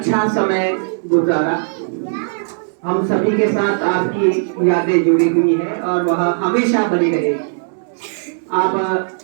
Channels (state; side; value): silent; left; 67 dB below the other